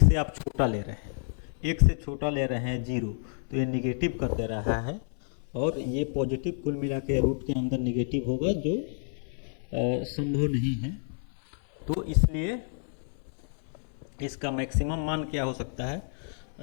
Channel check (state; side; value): silent; right; 58 dB below the other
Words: से आप छोटा ले रहे हैं, 1 से छोटा ले रहे हैं 0, तो ये निगेटिव कर दे रहा है, और ये पॉजिटिव कुल मिला के रूट के अंदर निगेटिव होगा, जो संभव नहीं है। तो इसलिए इसका मैक्सिमम मान क्या हो सकता है,